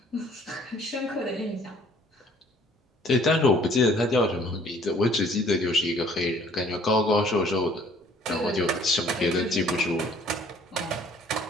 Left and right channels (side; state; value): both; normal; correlation 0.57